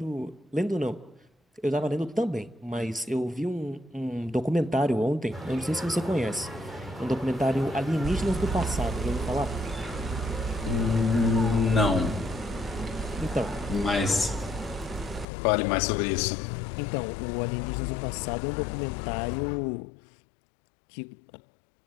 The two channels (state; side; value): drops out; right; at 15.2 s